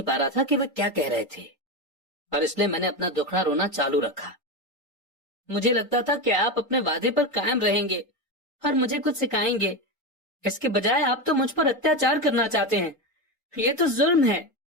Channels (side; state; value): both; normal; correlation 0.16